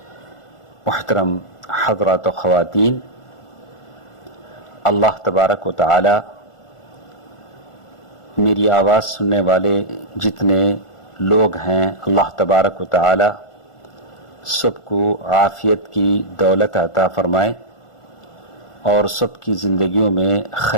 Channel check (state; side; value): late; right; 1.4 ms